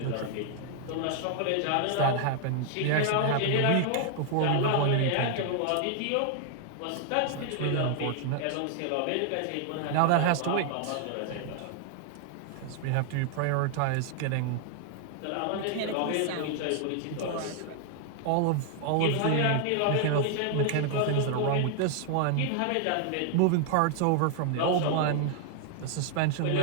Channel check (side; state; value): both; different; correlation 0.00